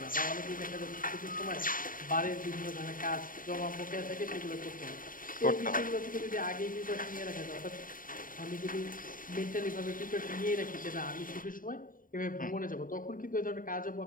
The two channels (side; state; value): right; late; 0.40 ms